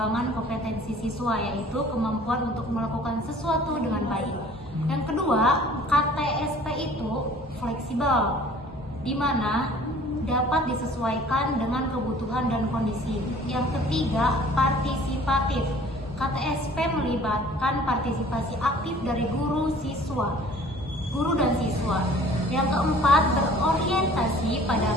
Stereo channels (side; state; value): both; normal; correlation 0.51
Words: kompetensi siswa, yaitu kemampuan untuk melakukan sesuatu dengan baik. Yang kedua, KTSP itu fleksibel, di mana dapat disesuaikan dengan kebutuhan dan kondisi. Yang ketiga, partisipatif. KTSP melibatkan partisipasi aktif dari guru dan siswa. Yang keempat, berorientasi pada